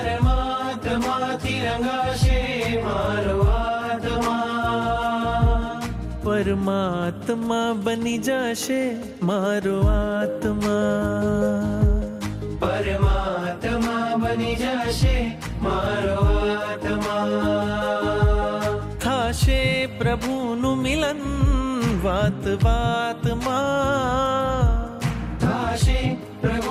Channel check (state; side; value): identical; both; correlation 1.00